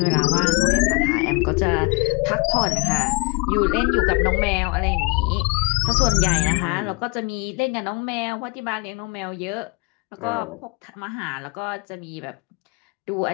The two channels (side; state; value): right; quieter; 27.9 dB